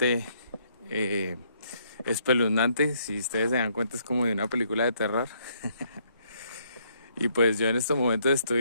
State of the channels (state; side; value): inverted; both; correlation -0.70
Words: espeluznante. Si ustedes se dan cuenta, es como de una película de terror. Y pues yo en estos momentos